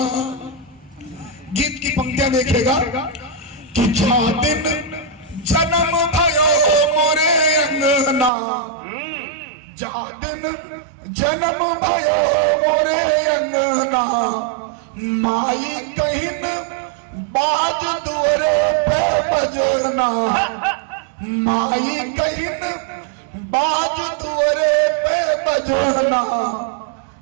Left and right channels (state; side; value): drops out; left; at 8.3 s